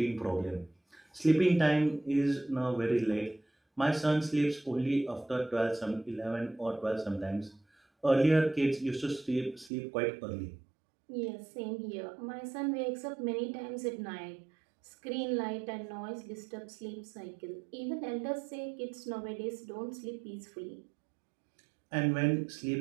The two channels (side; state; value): left; drops out; at 9.7 s